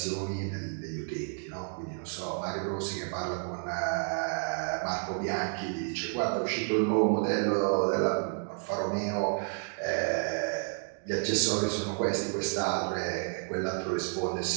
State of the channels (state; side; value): silent; left; 57 dB below the other